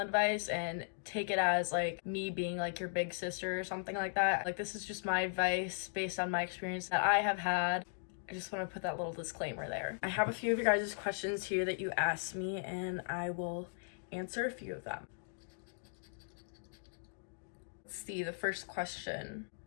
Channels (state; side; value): silent; right; digital silence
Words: and take it as like me being like your big sister or something like that. Like, this is just my advice based on my experience that I have had. I just want to put that little disclaimer there. I have a few of your guys' questions here that you asked me, and I will answer a few of them. Let's see, the first question.